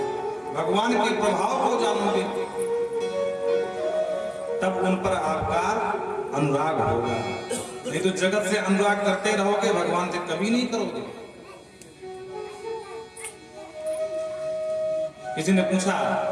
भगवान के प्रभाव को जानोगे, तब उन पर आपका अनुराग होगा। नहीं तो जगत से अनुराग करते रहोगे, भगवान से कभी नहीं करोगे। किसी ने पूछा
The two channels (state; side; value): identical; both; correlation 1.00